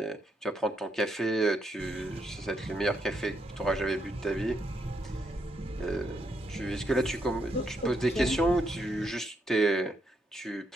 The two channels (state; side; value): normal; both; correlation 0.78